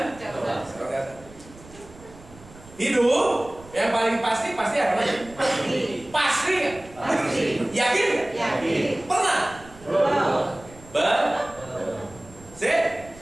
Hidup yang paling pasti apa aja? Pasti. Pasti nggak? Pasti. Yakin nggak? Yakin. Pernah? Belum.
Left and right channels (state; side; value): noise; right; rumble, 21 dB below the sound